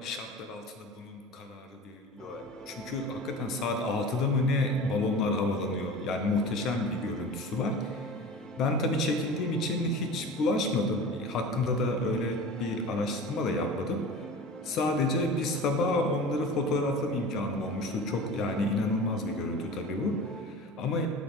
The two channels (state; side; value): normal; both; correlation 0.35